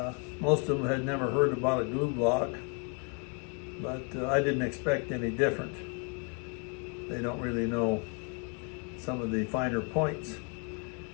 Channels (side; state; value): right; quieter; 37.0 dB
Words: Most of them had never heard about a glue block, but I didn't expect any different. They don't really know some of the finer points